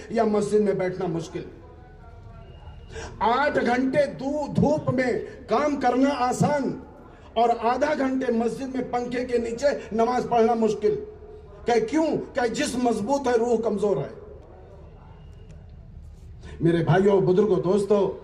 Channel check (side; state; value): both; identical; correlation 1.00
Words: یا مسجد میں بیٹھنا مشکل۔ 8 گھنٹے دھوپ میں کام کرنا آسان، اور آدھا گھنٹے مسجد میں پنکھے کے نیچے نماز پڑھنا مشکل۔ کہ کیوں؟ کہ جسم مضبوط ہے، روح کمزور ہے۔ میرے بھائیوں، بزرگوں، دوستوں،